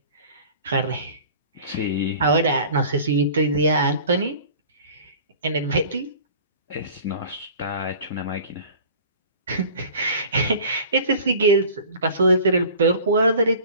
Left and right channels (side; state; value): both; inverted; correlation -0.44